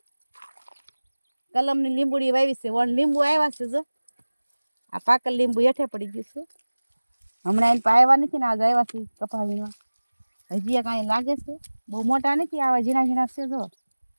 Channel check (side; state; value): both; inverted; correlation -1.00